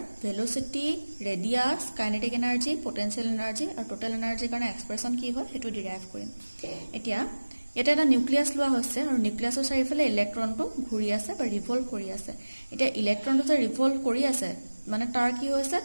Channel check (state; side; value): inverted; both; correlation -1.00